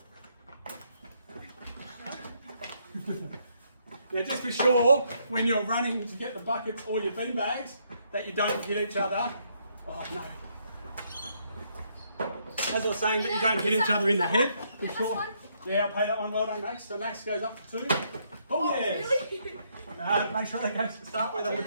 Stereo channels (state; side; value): inverted; both; correlation -0.73